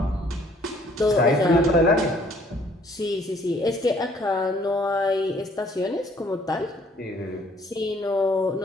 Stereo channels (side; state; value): both; normal; correlation 0.61